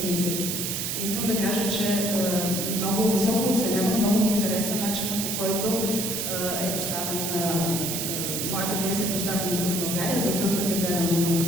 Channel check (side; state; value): right; noise; hiss, 2 dB below the sound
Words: Искам да кажа, че много високо оценявам, много ми хареса начинът, по който е поставен моята пиеса е поставена тук в България, за първ път гледам